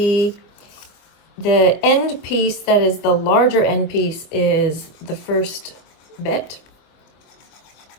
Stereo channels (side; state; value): right; late; 24 ms